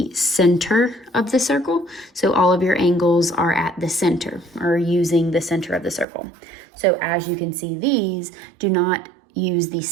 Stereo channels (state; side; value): drops out; left; at 6.1 s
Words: center of the circle. So all of your angles are at the center, or using the center of the circle. So as you can see, these do not use the